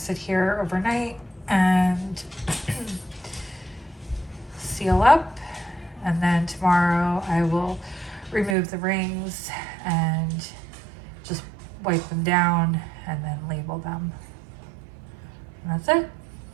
sit here overnight and seal up, and then tomorrow I will remove the rings and just wipe them down and then label them. And that's it.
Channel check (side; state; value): left; drops out; at 8.6 s